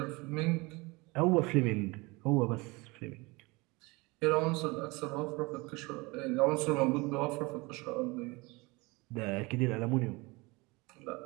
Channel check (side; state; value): left; quieter; 25.0 dB